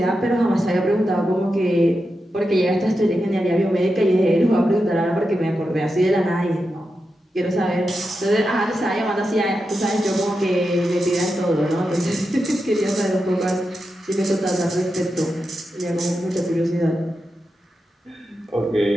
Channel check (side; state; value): both; normal; correlation 0.89